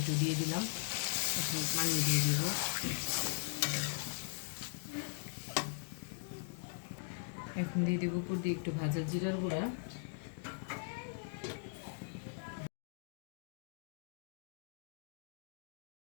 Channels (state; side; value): silent; right; digital silence